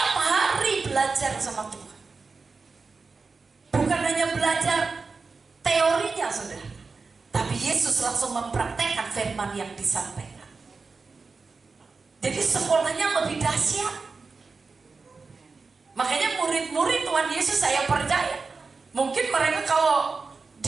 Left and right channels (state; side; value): quieter; left; 4.4 dB